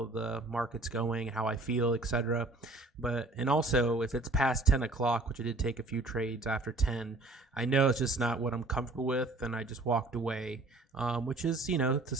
the market's going, how I feel, etc. And also if it's past 10 o'clock, which I did take a few trades after 10, I know it's just not what I'm comfortable with, and I just walked away, which is, it's a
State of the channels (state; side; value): quieter; left; 3.0 dB